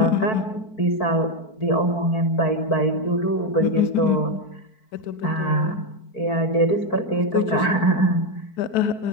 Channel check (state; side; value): late; right; 4.5 ms